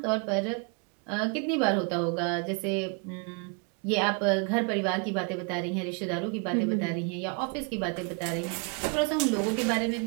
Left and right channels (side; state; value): left; quieter; 35.7 dB